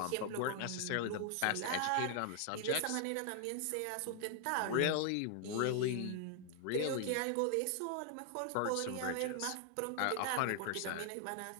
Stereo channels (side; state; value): both; different; correlation 0.00